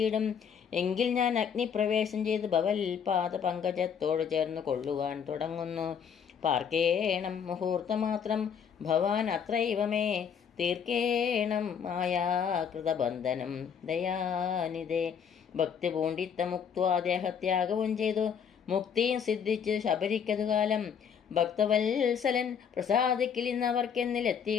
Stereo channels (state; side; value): quieter; right; 7.4 dB